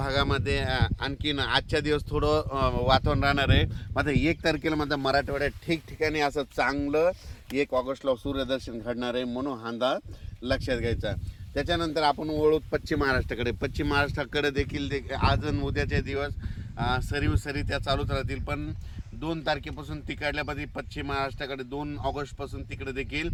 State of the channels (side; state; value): both; identical; correlation 1.00